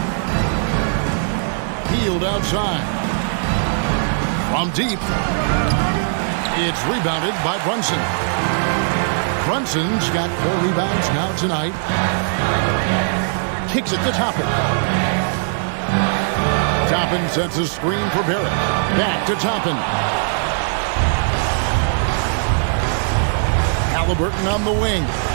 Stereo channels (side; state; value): left; silent; digital silence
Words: Hield outside. From deep. It's rebounded by Brunson. Brunson's got 4 rebounds now tonight. Kicks it to Toppin. Toppin sets a screen for Barrett. Back to Toppin. Halliburton on the wing.